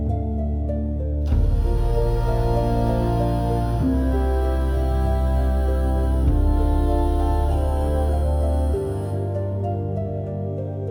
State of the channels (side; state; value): both; identical; correlation 1.00